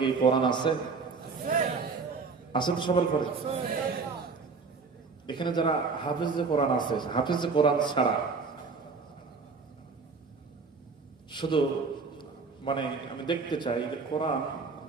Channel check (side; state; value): left; quieter; 4.6 dB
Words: কোরআন আছে? আছে তো সবার ঘরে? এখানে যারা হাফেজ কোরআন আছে, হাফেজ কোরআন ছাড়া শুধু মানে আমি দেখতে চাই যে কোরআন